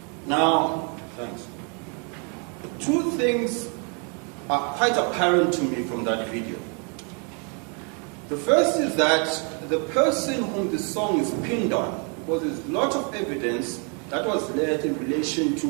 Now, thanks. 2 things are quite apparent to me from that video. The first is that the person whom the song is pinned on, because there's a lot of evidence that was led in relation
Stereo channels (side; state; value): left; quieter; 37.4 dB